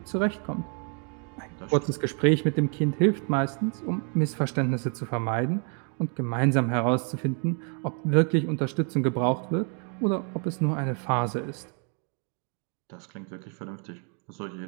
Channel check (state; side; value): quieter; left; 39.1 dB